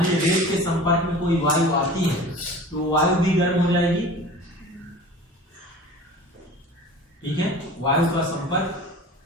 लीजिए रेत के संपर्क में कोई वायु आती है तो वायु भी गर्म हो जाएगी। ठीक है, वायु का संपर्क,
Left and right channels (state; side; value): normal; both; correlation 0.40